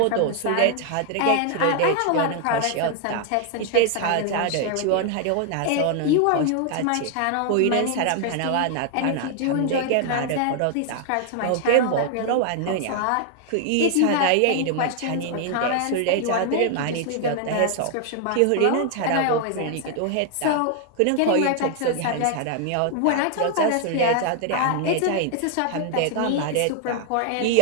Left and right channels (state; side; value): different; both; correlation 0.00